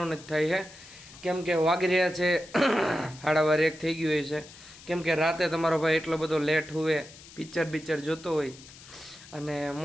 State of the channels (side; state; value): left; noise; hiss, 19 dB below the sound